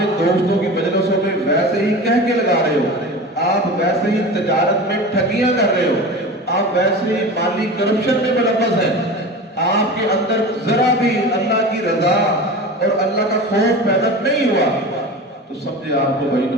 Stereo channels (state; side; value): normal; both; correlation 0.31